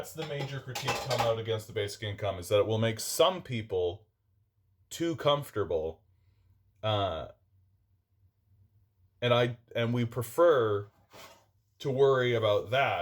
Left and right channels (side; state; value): both; identical; correlation 1.00